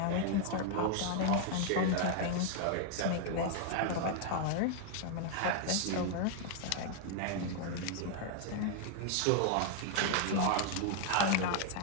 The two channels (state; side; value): different; both; correlation 0.00